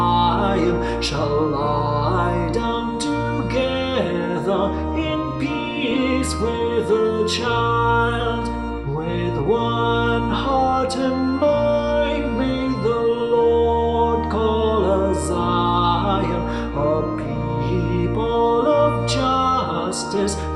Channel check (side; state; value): both; identical; correlation 1.00